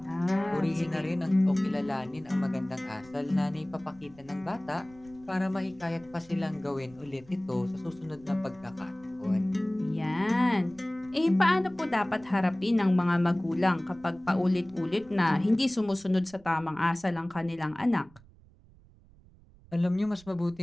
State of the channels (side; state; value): right; noise; rumble, 25 dB below the sound